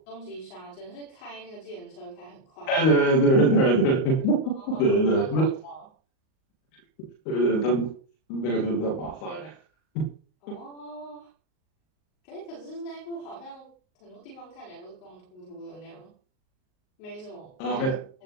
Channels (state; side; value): late; right; 38 ms